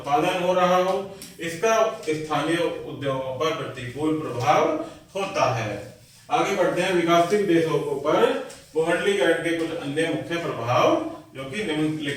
हो रहा हो। इसका स्थानीय उद्योगों पर प्रतिकूल प्रभाव होता है। आगे बढ़ते हैं विकासशील देशों पर भूमंडलीकरण के कुछ अन्य मुख्य प्रभाव जो कि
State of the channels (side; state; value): both; identical; correlation 1.00